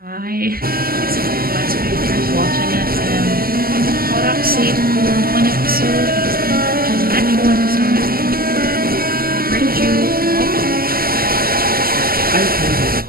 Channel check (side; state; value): left; late; 0.43 ms